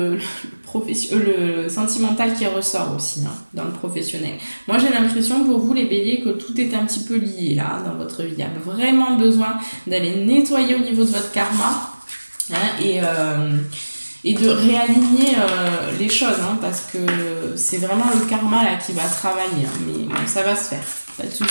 sentimental qui ressort aussi dans le professionnel. Moi j'ai l'impression pour vous les béliers que tout est un petit peu lié là dans votre vie. Il y a vraiment besoin d'aller nettoyer au niveau de votre karma et de réaligner les choses parce que c'est vraiment le karma là qui va travailler. Mais bon, ça va se faire, pas de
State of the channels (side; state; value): both; inverted; correlation -1.00